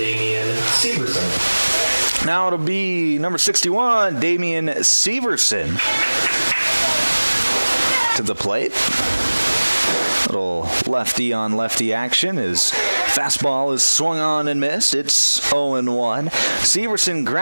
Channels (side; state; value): both; inverted; correlation -1.00